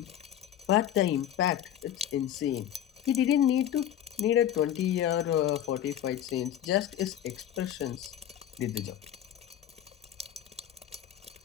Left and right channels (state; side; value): quieter; right; 11.1 dB